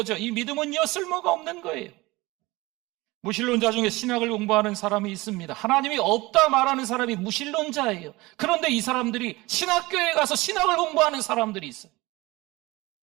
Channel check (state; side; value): quieter; left; 21.4 dB